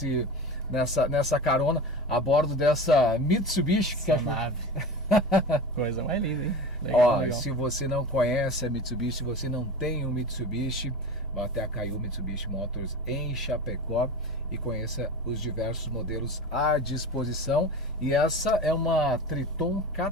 nessa carona a bordo dessa Mitsubishi. Essa nave. Coisa mais linda, hein? Legal, legal. Se você não conhece a Mitsubishi, se você não tem um Mitsubishi, vá até a Kaiô Mitsubishi Motors em Chapecó e conheça os diversos modelos à disposição. E essa é uma Triton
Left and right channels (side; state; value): both; normal; correlation 0.32